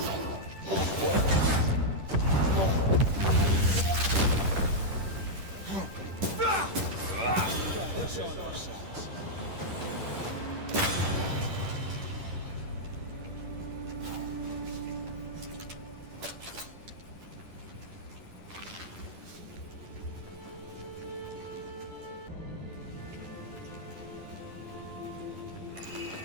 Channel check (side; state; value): left; late; 10 ms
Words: They're showing our sides.